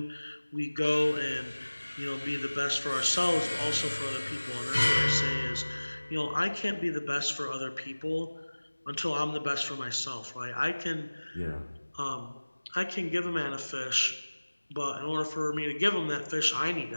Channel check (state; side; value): inverted; both; correlation -1.00